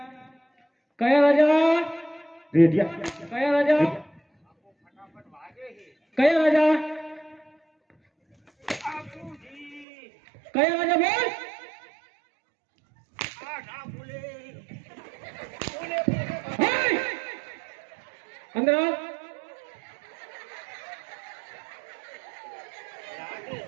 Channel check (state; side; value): drops out; left; at 9.9 s